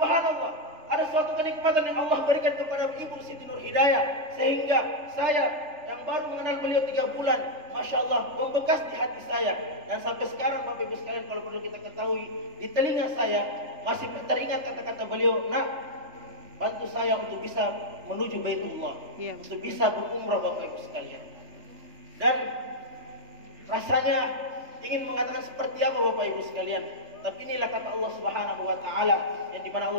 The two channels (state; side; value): late; left; 3.3 ms